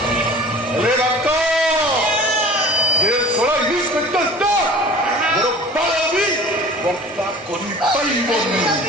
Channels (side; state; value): both; normal; correlation 0.43